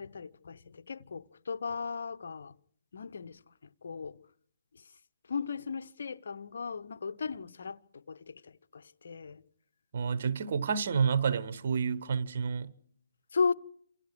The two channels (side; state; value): both; inverted; correlation -0.80